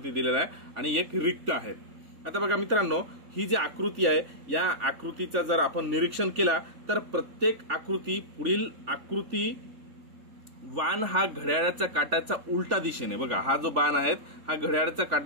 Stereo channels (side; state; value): left; late; 3.4 ms